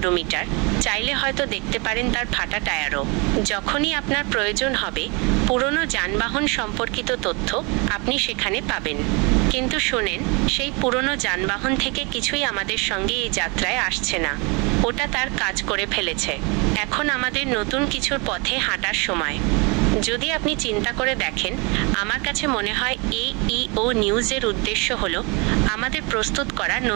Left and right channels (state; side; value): quieter; left; 29.9 dB